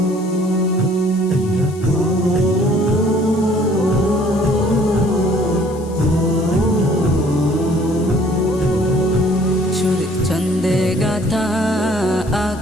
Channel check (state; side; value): noise; left; hiss, 22 dB below the sound